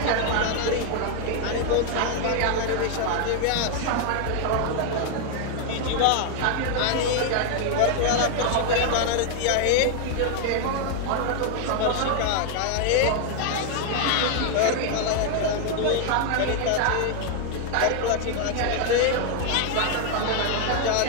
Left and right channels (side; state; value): both; different; correlation 0.00